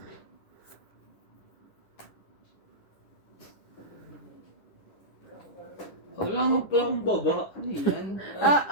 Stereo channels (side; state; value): right; late; 10 ms